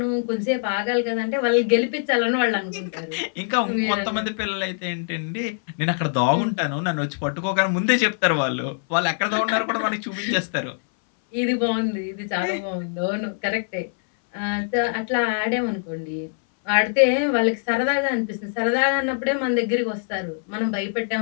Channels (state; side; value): silent; right; 61 dB below the other